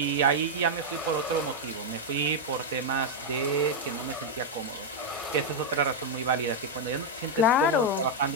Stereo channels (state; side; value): normal; both; correlation 0.00